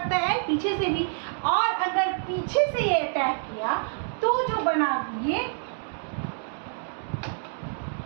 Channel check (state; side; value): silent; left; 60 dB below the other